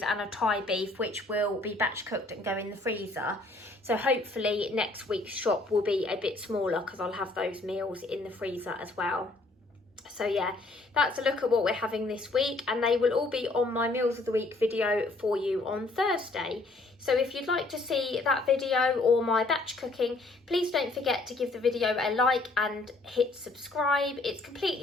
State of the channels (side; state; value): right; quieter; 3.1 dB